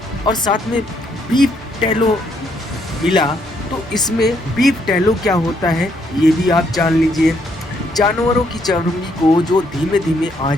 और साथ में बीफ टैलो मिला। तो इसमें बीफ टैलो क्या होता है, ये भी आप जान लीजिए। जानवरों की चर्बी को जो धीमे धीमे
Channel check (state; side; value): normal; both; correlation 0.72